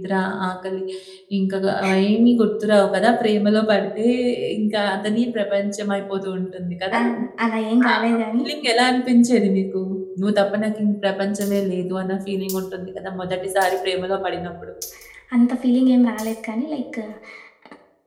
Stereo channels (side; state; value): both; identical; correlation 1.00